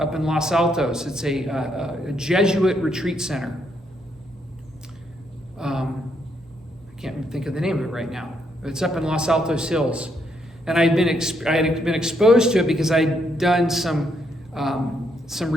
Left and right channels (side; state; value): both; normal; correlation 0.75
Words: in Los Altos. It's a Jesuit retreat center. I can't think of the name of it right now. But it's up in Los Altos Hills. And I had been exposed to it because I'd done some